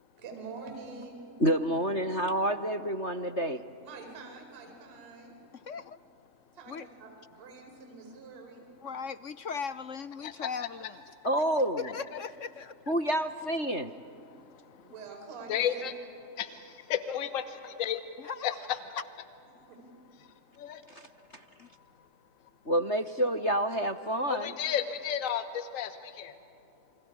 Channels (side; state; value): right; late; 3.3 ms